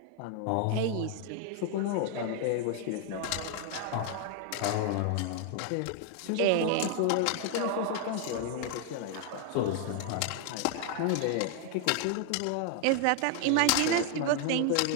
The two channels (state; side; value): different; both; correlation 0.00